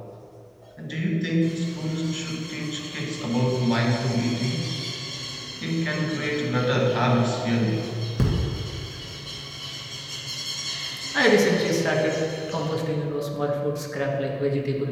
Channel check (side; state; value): both; identical; correlation 1.00